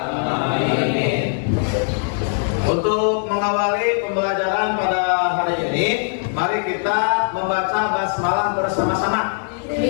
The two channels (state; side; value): silent; right; digital silence